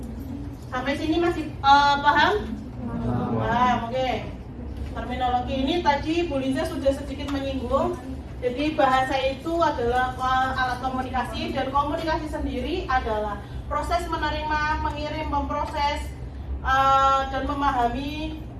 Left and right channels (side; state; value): both; identical; correlation 1.00